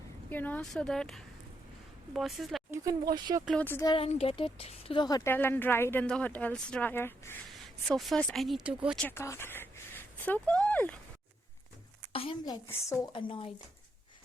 so that boss is like, you can wash your clothes there and get it to the hotel and dry it in the hotel's dryer. So first I need to go check out. So cool. I am like so annoyed.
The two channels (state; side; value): normal; both; correlation 0.79